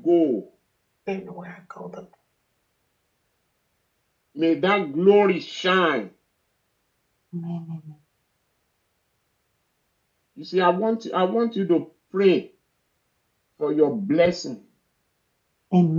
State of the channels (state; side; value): identical; both; correlation 1.00